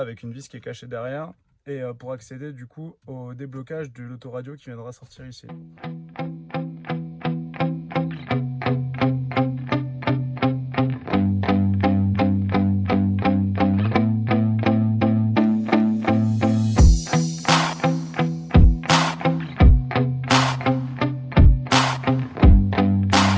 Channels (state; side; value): identical; both; correlation 1.00